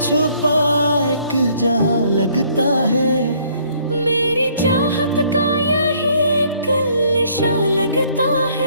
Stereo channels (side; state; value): both; inverted; correlation -0.63